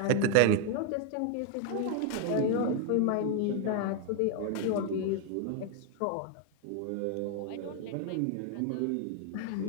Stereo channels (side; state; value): both; different; correlation 0.01